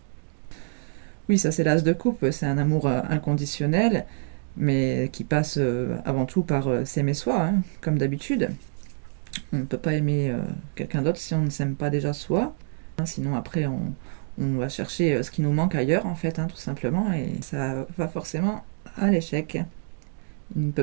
Oui, ça c'est l'as de coupe. C'est un amour inconditionnel, mais qui passe avant tout par s'aimer soi, hein, comme d'habitude. On ne peut pas aimer quelqu'un d'autre si on ne s'aime pas déjà soi. Sinon après on va chercher ce qui nous manque ailleurs en fait, hein, tout simplement, et ça va forcément à l'échec. Il ne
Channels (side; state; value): left; silent; digital silence